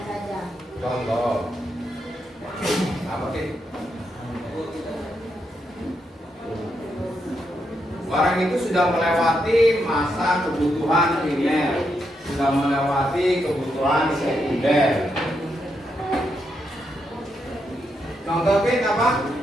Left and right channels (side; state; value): both; normal; correlation 0.81